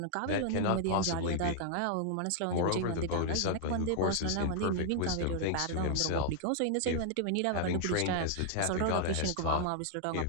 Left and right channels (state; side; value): different; both; correlation 0.00